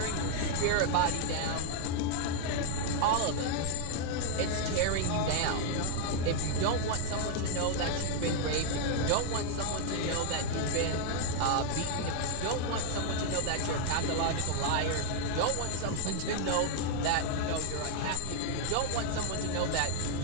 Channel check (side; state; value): both; different; correlation 0.00